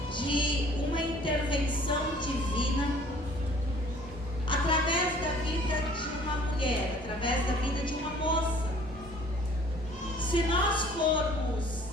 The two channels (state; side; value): normal; both; correlation 0.53